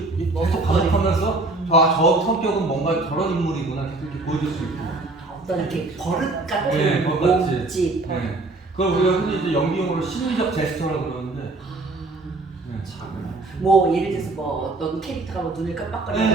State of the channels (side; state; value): left; quieter; 3.1 dB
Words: 계속 반복하면서 저 성격은 뭔가 저런 인물이구나 계속 이렇게 보여줄 수 있고. 어떤 이렇게 버릇 같은 네, 버릇 같이. 몸집. 네. 그걸 우리가 흔히 이제 연기용어로 심리적 제스처라고 그러는데. 네. 뭐 예를 들어서 뭐 어떤 캐릭터가 뭐 눈을 깜빡거리고